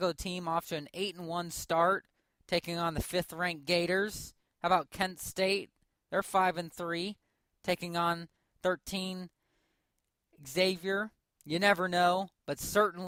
team off to an 8-1 start, taking on the fifth-ranked Gators. How about Kent State? They're 5-3, taking on 13 Xavier. You never know, but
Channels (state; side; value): identical; both; correlation 1.00